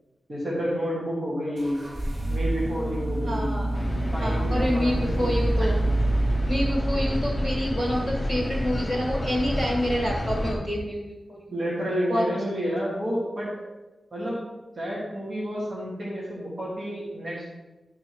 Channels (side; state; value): both; normal; correlation 0.95